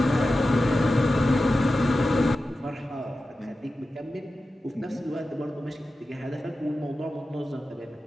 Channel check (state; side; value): normal; both; correlation 0.93